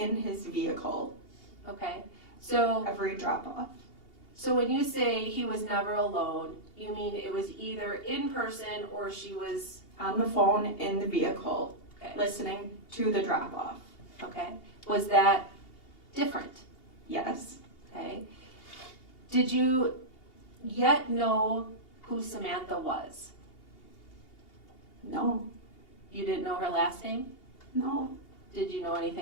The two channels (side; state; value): right; late; 2.8 ms